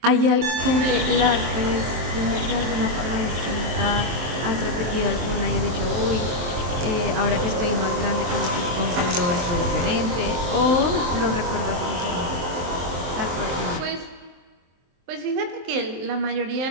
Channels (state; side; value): late; left; 23 ms